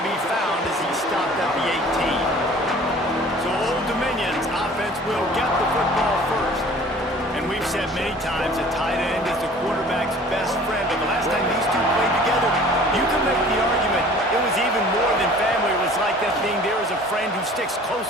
be found as he stopped at the 18. So Old Dominion's offense will get the football first. And we've said many times that tight end is the quarterback's best friend, but the last time these two played together, you can make the argument it was even more than family. It was like that thing, there is a friend who sticks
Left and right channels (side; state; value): both; normal; correlation 0.48